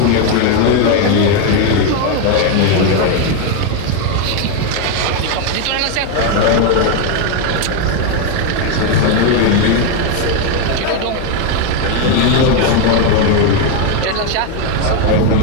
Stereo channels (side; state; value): both; different; correlation 0.02